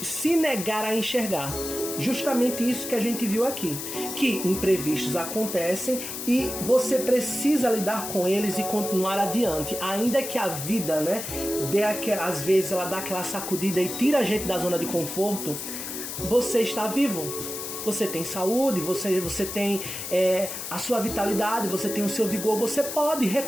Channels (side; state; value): left; noise; hiss, 7 dB below the sound